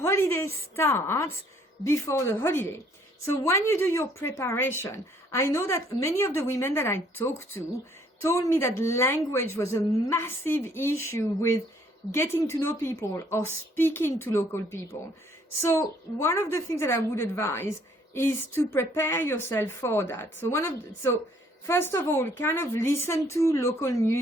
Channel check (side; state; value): both; normal; correlation 0.63